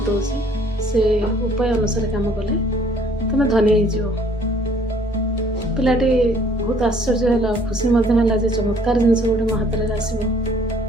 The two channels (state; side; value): normal; both; correlation 0.59